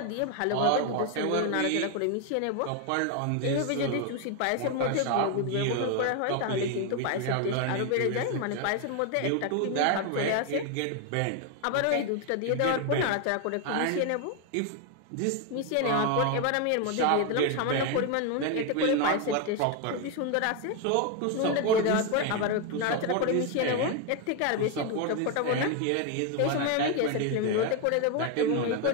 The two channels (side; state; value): both; different; correlation 0.01